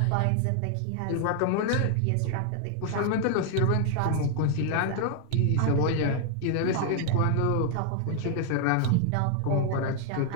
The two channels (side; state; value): both; different; correlation 0.00